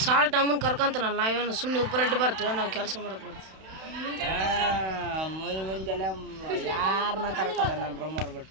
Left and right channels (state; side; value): late; left; 31 ms